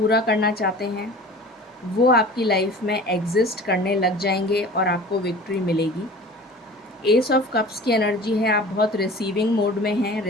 करना चाहते हैं, वो आपकी लाइफ में एग्जिस्ट करने लग जाएंगे और आपको विक्ट्री मिलेगी। एस ऑफ कप्स की एनर्जी है, आप बहुत रिसीविंग मोड में हैं,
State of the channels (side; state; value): both; normal; correlation 0.41